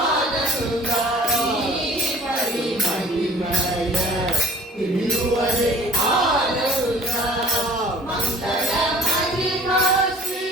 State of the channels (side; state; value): both; normal; correlation 0.48